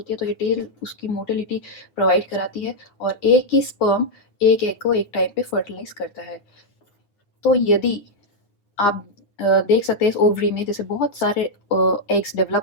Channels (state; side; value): late; right; 9.3 ms